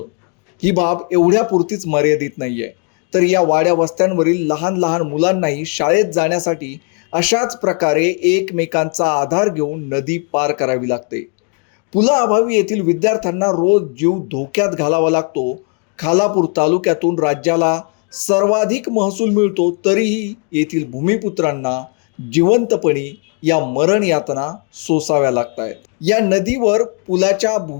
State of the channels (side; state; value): right; quieter; 39.5 dB